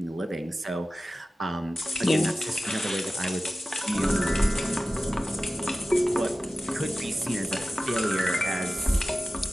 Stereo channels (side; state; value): both; normal; correlation 0.96